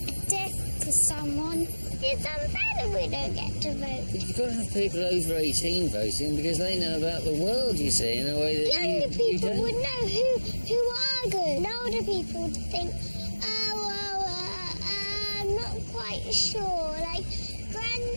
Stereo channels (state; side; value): inverted; both; correlation -1.00